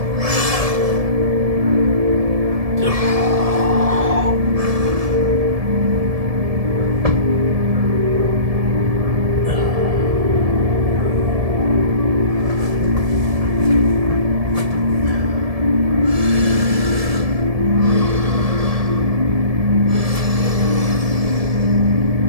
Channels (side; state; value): left; late; 1.7 ms